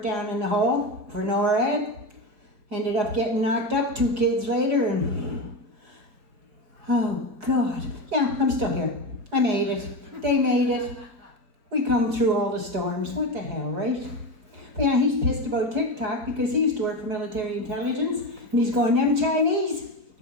down in the hole for NORAD. Ended up getting knocked up 2 kids later, and oh God. Yeah, I'm still here. I made it. They made it. We come through all the storms. What the hell, right? But yeah, he's pissed about TikTok because he used to work for military intelligence, and he's going, them Chinese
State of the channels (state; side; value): late; left; 4.8 ms